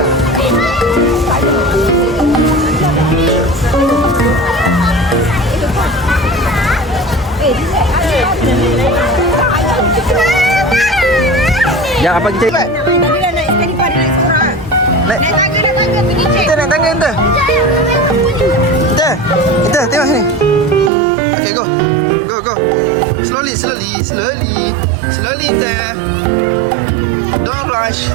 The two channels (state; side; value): drops out; left; at 20.9 s